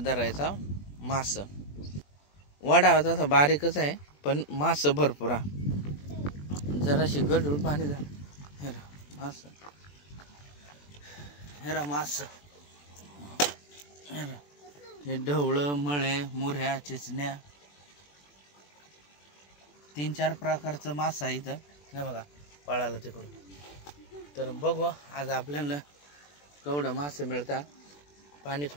धरायचा मास वाडा तसा बारीकच आहे, पण मास भरपूर आहे. जराशी गडूळ पाणी झालं. हेरा मास, हेरा मास, हेरा हे ढवळं, मळे, मुऱ्या, चिचण्या, 3-4 प्रकारचं मास आहे इथं. हे बघा पळाला तिकडून. तर बघू आज आपल्याला केवढं मासे मिळतात. पाणी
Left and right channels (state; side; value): late; right; 21 ms